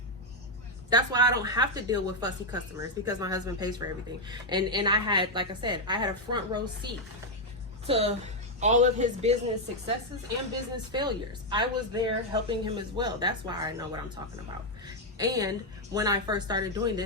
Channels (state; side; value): normal; both; correlation 0.01